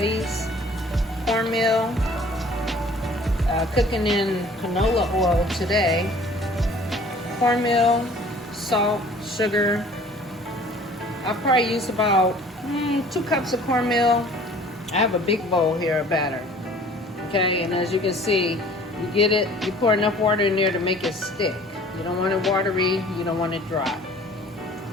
Cornmeal. Cooking in canola oil today. Cornmeal, salt, sugar. I'll probably use about 2 cups of cornmeal. I have a big bowl here of batter. Okay, and as you can see, you get it, you pour enough water in there to make it stick. You don't want it watery, you don't want it dry.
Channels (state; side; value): normal; both; correlation 0.51